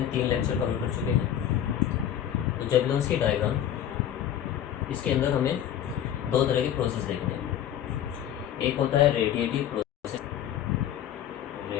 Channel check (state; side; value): quieter; right; 10.5 dB